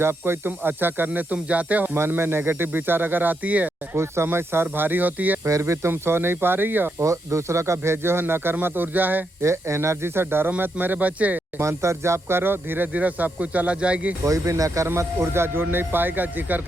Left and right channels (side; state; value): both; normal; correlation 0.81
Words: कोई तुम अच्छा करने तुम जाते हो, मन में नेगेटिव विचार अगर आती है, कुछ समय सर भारी होती है, फिर भी तुम सो नहीं पा रही हो और दूसरों का भेजे हो नकरमत ऊर्जा है। ये एनर्जी से डरो मत मेरे बच्चे। मंत्र जाप करो, धीरे धीरे सब कुछ चला जाएगी। कोई भी नकरमत ऊर्जा जुड़ नहीं पाएगा जिक्र